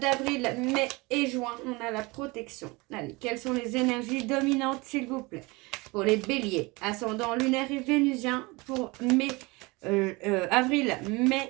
mai et juin, on a la protection. Allez, quelles sont les énergies dominantes s'il vous plaît? Pour les béliers, ascendant lunaire et vénusien pour avril,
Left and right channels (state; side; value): quieter; left; 24.8 dB